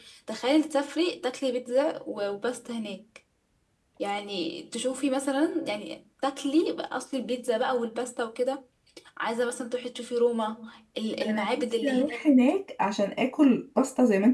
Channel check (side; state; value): both; identical; correlation 1.00